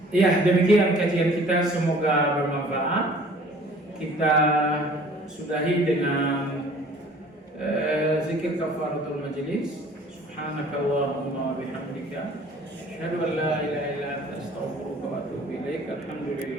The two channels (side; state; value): both; normal; correlation 0.51